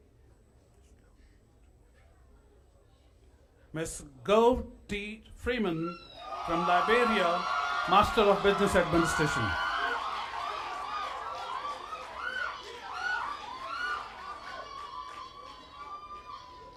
Ms. Gove T. Freeman from Liberia, Master of Business Administration.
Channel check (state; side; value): identical; both; correlation 1.00